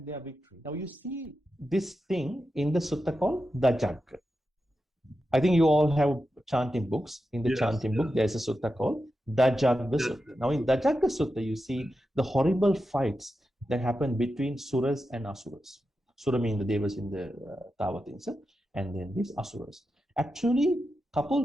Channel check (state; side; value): normal; both; correlation 0.90